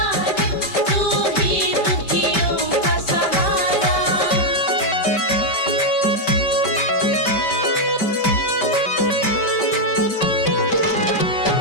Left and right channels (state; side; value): late; right; 5.2 ms